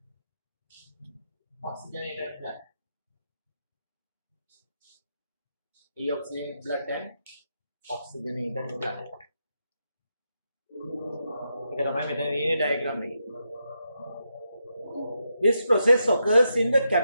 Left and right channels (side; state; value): both; inverted; correlation -0.84